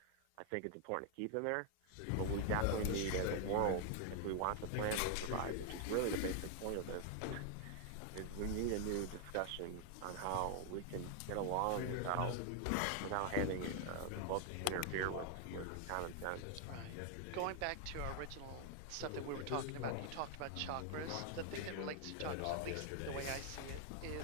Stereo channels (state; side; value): different; both; correlation 0.00